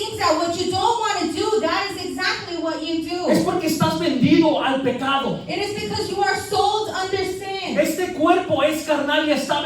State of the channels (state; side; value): identical; both; correlation 1.00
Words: that what you don't want to do, that is exactly what you Es do. porque estás vendido al pecado. It is because you are sold under sin. Este cuerpo es carnal y está